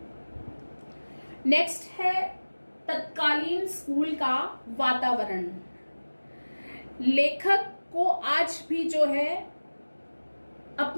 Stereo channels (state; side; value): inverted; both; correlation -1.00